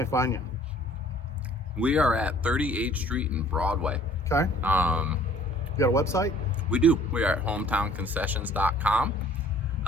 find you? We are at 38th Street and Broadway. Okay. You got a website? We do. We are at hometownconcessions.com.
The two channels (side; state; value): both; normal; correlation 0.55